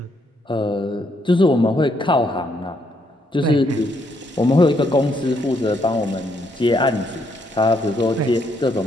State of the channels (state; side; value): normal; both; correlation 0.74